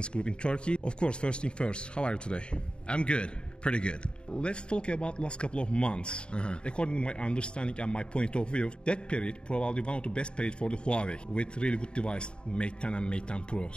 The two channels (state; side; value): late; right; 0.052 ms